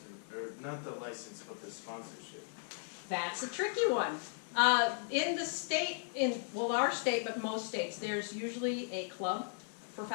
or not the license, but the sponsorship? That's a tricky one. In the state, our state, but most states, there's usually a club for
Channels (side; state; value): right; silent; 53 dB below the other